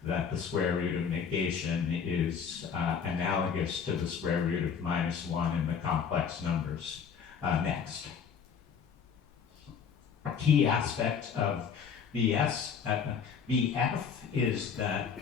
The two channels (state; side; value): quieter; right; 6.8 dB